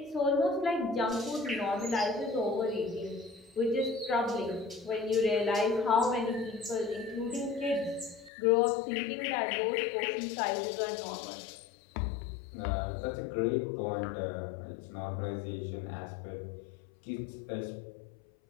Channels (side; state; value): right; drops out; at 8.3 s